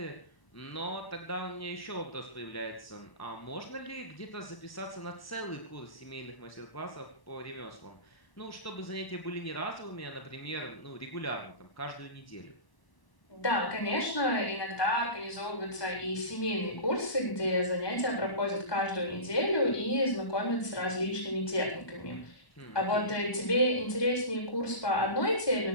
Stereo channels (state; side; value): late; right; 1.1 ms